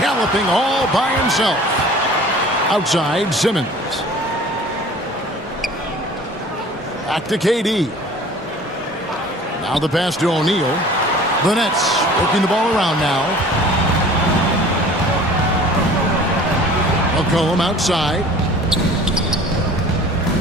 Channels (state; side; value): normal; both; correlation 0.46